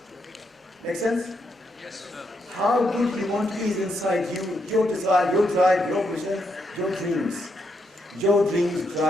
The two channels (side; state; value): both; normal; correlation 0.79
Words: Make sense? Yes, sir. How good you want to be is inside you, your desire, your drive, your vision, your dreams. Your dreams